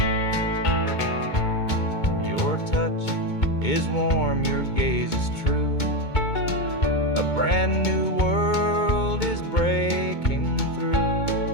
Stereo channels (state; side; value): late; right; 2.2 ms